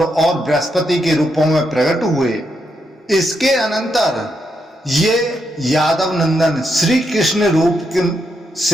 और बृहस्पति के रूपों में प्रकट हुए। इसके अनंतर ये यादव नंदन श्री कृष्ण रूप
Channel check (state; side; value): normal; both; correlation 0.81